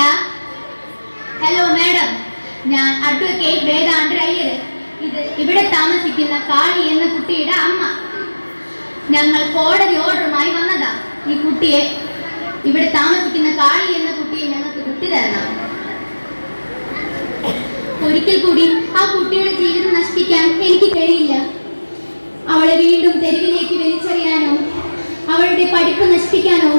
ഹലോ മാഡം, ഞാൻ അഡ്വക്കേറ്റ് വേദാന്തർ അയ്യർ. ഇത് ഇവിടെ താമസിക്കുന്ന കാളി എന്ന കുട്ടിയുടെ അമ്മ. ഞങ്ങൾ കോടതി ഓർഡറുമായി വന്നതാ. ഈ കുട്ടിയെ, ഇവിടെ താമസിക്കുന്ന കാളി എന്ന കുട്ടിയെ ഞങ്ങൾക്ക് വിട്ടു തരണം. ഒരിക്കൽ കൂടി ആ കുട്ടിയുടെ ജീവിതം നശിപ്പിക്കാൻ എനിക്ക് കഴിയില്ല. അവളെ വീണ്ടും തെരുവിലേക്ക് വലിച്ചെറിയാനോ അവളുടെ പഠിപ്പ് നശിപ്പിക്കാനോ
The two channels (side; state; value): both; inverted; correlation -1.00